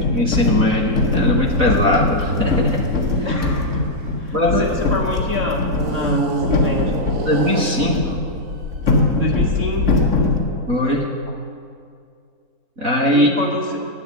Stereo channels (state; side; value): late; left; 4.0 ms